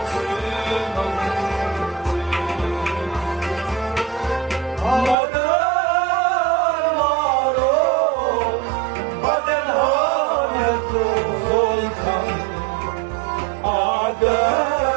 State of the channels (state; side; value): drops out; left; at 5.2 s